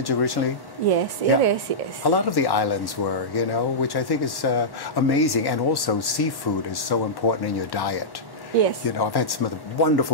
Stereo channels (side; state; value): right; late; 1.1 ms